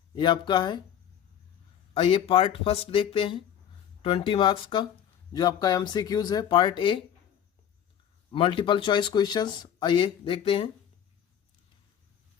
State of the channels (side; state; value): right; quieter; 9.5 dB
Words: ये आपका है। आइए पार्ट फर्स्ट देखते हैं 20 मार्क्स का जो आपका एमसीक्यूज है। Part A multiple choice questions. आइए देखते हैं।